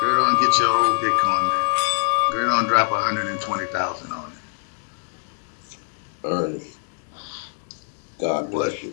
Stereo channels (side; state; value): right; silent; 63 dB below the other